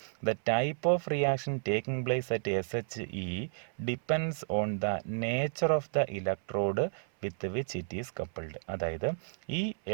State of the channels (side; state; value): left; silent; 56 dB below the other